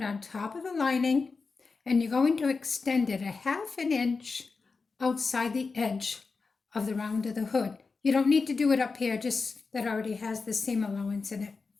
on top of the lining, and you're going to extend it 1/2 inch outside the edge of the round of the hood. You don't need to do it up here, just that already has the seam allowance in it.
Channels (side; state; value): right; quieter; 4.4 dB